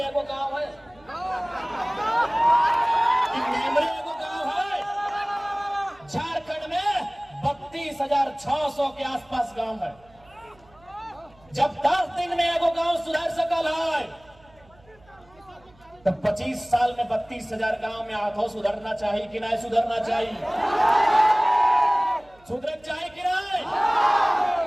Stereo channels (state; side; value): noise; right; hum, 29 dB below the sound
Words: एगो गांव है, कि नेमरे एगो गांव है? झारखंड में 32,600 के आसपास गांव है। जब 10 दिन में एगो गांव सुधार सकल है तो 25 साल में 32,000 गांव में आधो सुधरना चाहिए कि नहीं सुधरना चाहिए? सुधर चाहिए कि नहीं?